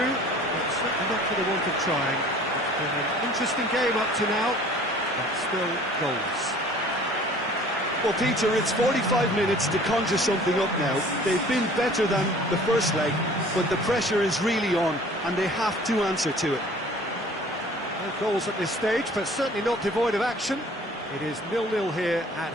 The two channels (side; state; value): both; normal; correlation 0.49